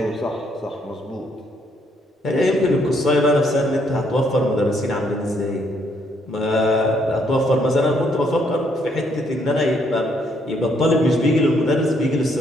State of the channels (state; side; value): normal; both; correlation 0.71